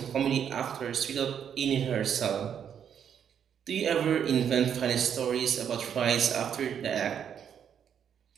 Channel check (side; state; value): left; quieter; 8.4 dB